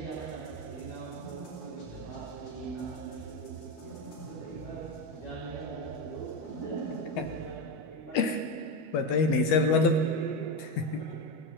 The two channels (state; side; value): late; right; 13 ms